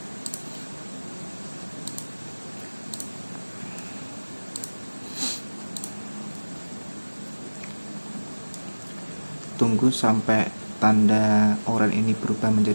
Tunggu sampai tanda oranye ini berubah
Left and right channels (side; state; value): both; inverted; correlation -1.00